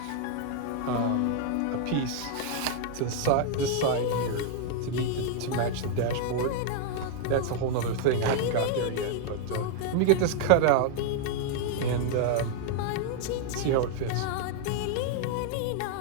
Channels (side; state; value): both; different; correlation -0.01